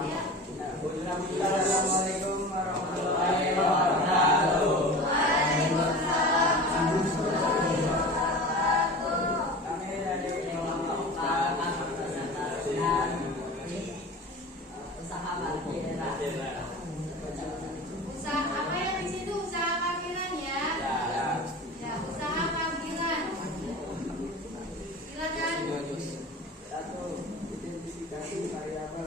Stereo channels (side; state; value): both; normal; correlation 0.35